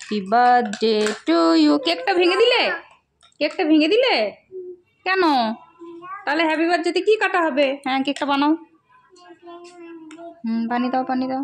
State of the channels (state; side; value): identical; both; correlation 1.00